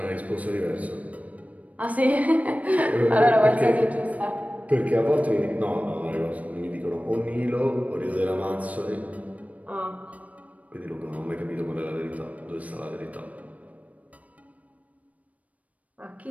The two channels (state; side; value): late; left; 0.069 ms